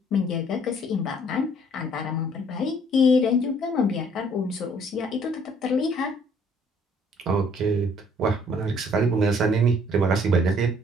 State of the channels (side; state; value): both; normal; correlation 0.61